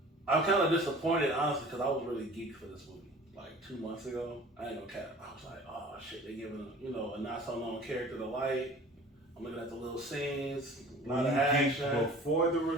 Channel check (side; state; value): both; normal; correlation 0.45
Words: I'm kind of disappointed, honestly, because I was really geeked for this movie. Like 2 months ago, I ain't gonna cap. I was like, oh shit, they giving a not so known character the light. I'm looking at the little scenes, a lot of action. Before the